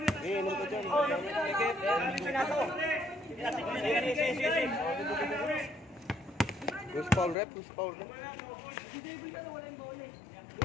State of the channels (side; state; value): right; drops out; at 7.4 s